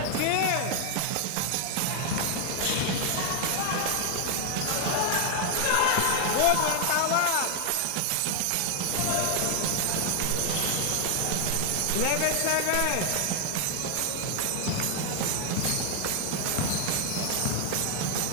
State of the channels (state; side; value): different; both; correlation 0.00